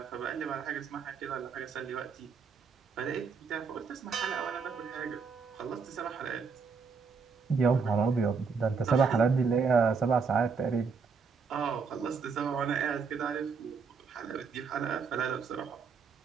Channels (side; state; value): left; quieter; 5.4 dB